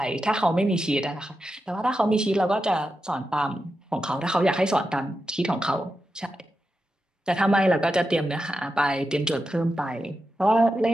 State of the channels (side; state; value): both; normal; correlation 0.89